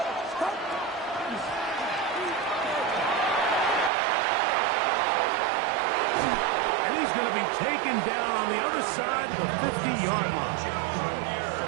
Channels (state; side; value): drops out; left; at 3.9 s